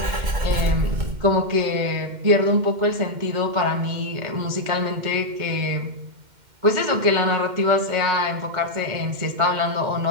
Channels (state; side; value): late; left; 2.1 ms